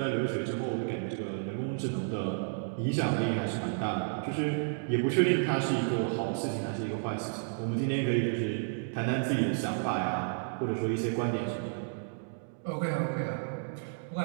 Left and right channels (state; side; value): silent; left; digital silence